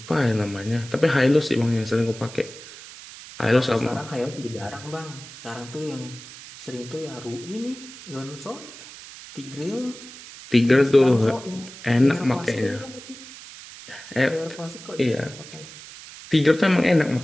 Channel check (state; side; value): noise; right; hiss, 16 dB below the sound